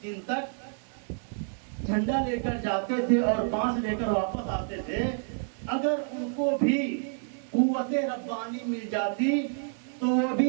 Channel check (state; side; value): silent; left; 59 dB below the other